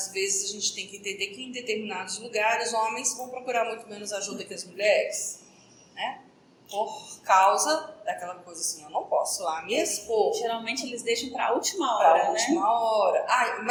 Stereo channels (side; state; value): both; identical; correlation 1.00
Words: vezes a gente tem que entender que em determinados lugares homens vão procurar muito menos ajuda que as mulheres, né? Por causa daquela coisa assim, eu não posso lá me expor. Geralmente eles deixam para a última hora, Pra última hora.